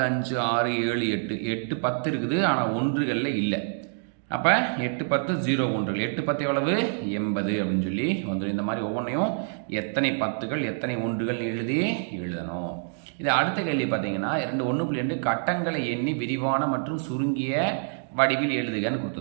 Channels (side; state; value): left; silent; digital silence